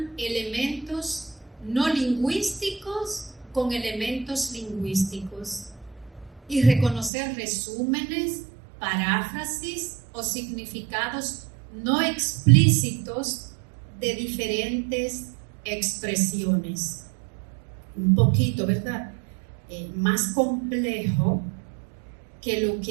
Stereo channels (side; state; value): left; drops out; at 7.1 s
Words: elementos no lingüísticos con elementos lingüísticos y reconocer resúmenes, paráfrasis o significados no explícitos de diferentes expresiones. Un poquito, ¿verdad? Más complejo que lo